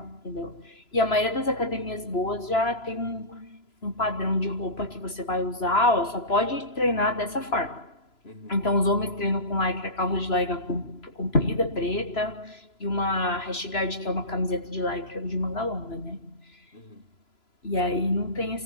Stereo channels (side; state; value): right; late; 3.0 ms